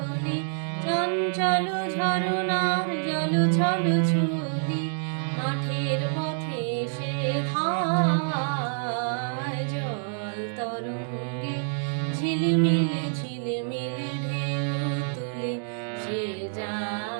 চঞ্চল ঝরনার জল ছল ছলি, মাঠের পথে সে ধায়, জল তরঙ্গে ঝিলমিল ঝিলমিল ঢেউ তুলে সে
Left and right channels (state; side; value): silent; left; digital silence